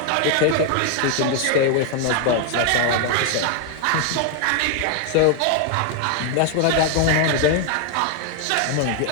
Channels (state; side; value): different; both; correlation 0.01